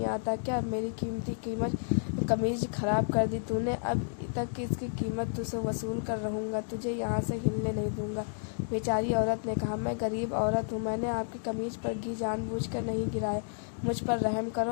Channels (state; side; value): silent; right; digital silence